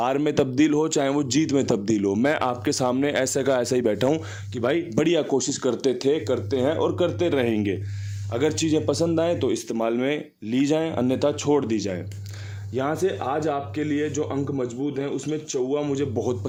में तब्दील हो, चाहे वो जीत में तब्दील हो, मैं आपके सामने ऐसे का ऐसा ही बैठा हूँ कि भाई बढ़िया कोशिश करते थे, करते हैं और करते रहेंगे। अगर चीज़ें पसंद आएँ तो इस्तेमाल में ली जाएँ, अन्यथा छोड़ दी जाए। यहाँ से आज आपके लिए जो अंक मजबूत हैं, उसमें चौवा मुझे बहुत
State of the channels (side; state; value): both; identical; correlation 1.00